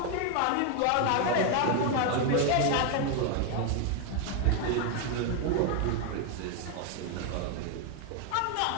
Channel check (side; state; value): both; different; correlation 0.01